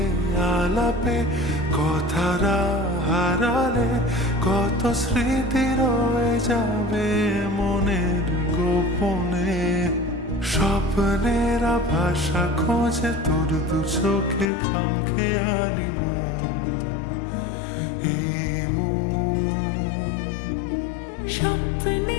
আলাপে কথারা হারালে, কত স্মৃতি রয়ে যাবে মনের গোপনে। স্বপ্নেরা ভাষা খোঁজে তোর দু চোখে খামখেয়ালি মন। এই মন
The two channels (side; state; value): right; drops out; at 14.5 s